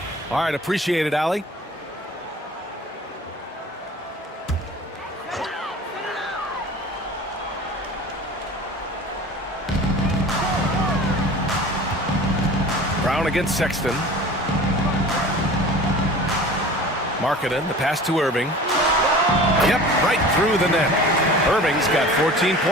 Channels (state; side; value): normal; both; correlation 0.41